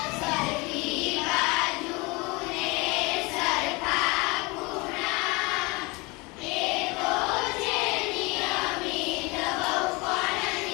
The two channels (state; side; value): quieter; right; 25.9 dB